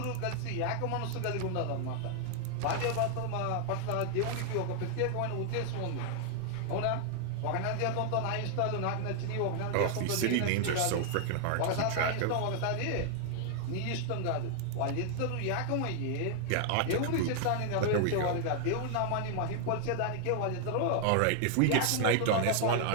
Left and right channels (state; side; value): different; both; correlation 0.00